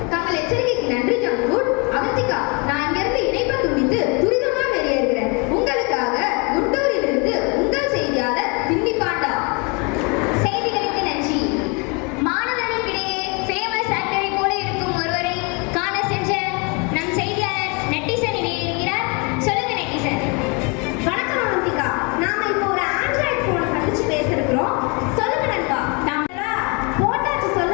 தங்கள் எச்சரிக்கைக்கு நன்றி ஜங்குட். அவந்திகா, நான் இங்கிருந்து இணைப்பை துண்டித்து துரிதமா வெளியேறுகிறேன். உங்களுக்காக குண்டூரிலிருந்து உங்கள் செய்தியாளர் பின்னி பாண்டா. செய்திகளுக்கு நன்றி. மாணவர்களுக்கிடையே ஃபேமஸ் ஆக்டரை போல இருக்கும் ஒருவரை காண சென்ற நம் செய்தியாளர் நெட்டிசன் இணையிருக்கிறார். சொல்லுங்க நெட்டிசன். வணக்கம் அவந்திகா. நாம இப்போ ஒரு ஆண்ட்ராய்டு போனை சந்திச்சு பேசிருக்கிறோம். சொல்லுங்க நண்பா. நம்ம போட்டாச்சு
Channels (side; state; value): right; quieter; 31.9 dB